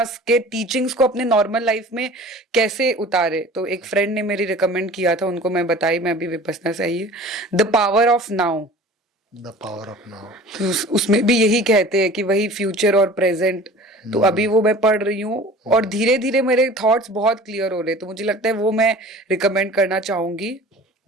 के टीचिंग्स को अपने नॉर्मल लाइफ में कैसे उतारे। तो एक फ्रेंड ने मेरी रिकमेंड किया था, उनको मैं बताई, मैं अभी विपसना से आई है, the power of now. The power of now. उसमें भी यही कहते हैं कि वही फ्यूचर और प्रेजेंट। तो अभी वो मैं पढ़ रही हूँ और धीरे धीरे मेरे थॉट्स बहुत क्लियर हो रहे हैं, तो मुझे लगता है वो मैं रिकमेंड करना चाहूंगी।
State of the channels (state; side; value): normal; both; correlation 0.43